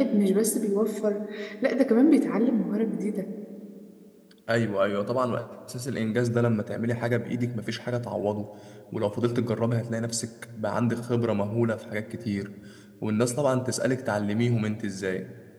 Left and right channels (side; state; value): both; identical; correlation 1.00